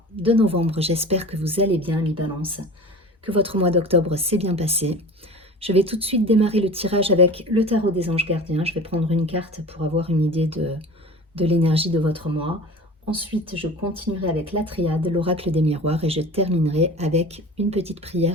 de novembre. J'espère que vous allez bien, les balances, que votre mois d'octobre s'est bien passé. Je vais tout de suite démarrer le tirage avec le tarot des anges gardiens. Je vais prendre une carte pour avoir une idée de l'énergie de votre mois. Ensuite, je continuerai avec la triade, l'oracle des miroirs, et je terminerai avec une petite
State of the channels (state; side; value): normal; both; correlation 0.37